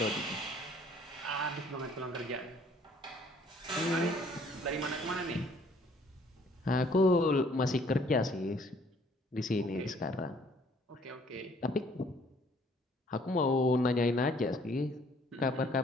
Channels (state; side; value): normal; both; correlation 0.60